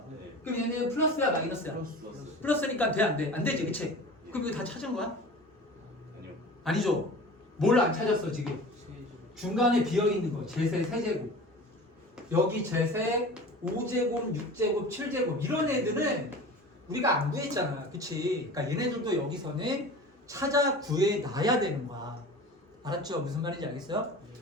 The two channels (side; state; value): both; normal; correlation 0.38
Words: 네. 그럼 얘는 플러스야 마이너스야? 플러스니까 돼 안 돼? 안 되지 그치? 그럼 이거 다 찾은 거야? 아니요. 아니죠. 뭘 안 찾았어 지금? 중간에 비어있는 거 제세 세제곱 여기 제세 5제곱 6제곱 7제곱 이런 애들은 우리가 안 구했잖아 그치? 그러니까 얘네들도 여기서는 찾아 구해놔야 되는 거야 알았죠? 무슨 말인지 알겠어요?